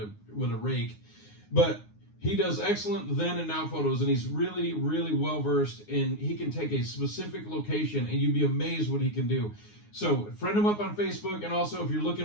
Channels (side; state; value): right; late; 9.6 ms